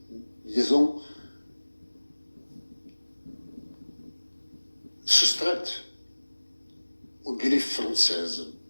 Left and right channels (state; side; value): inverted; both; correlation -1.00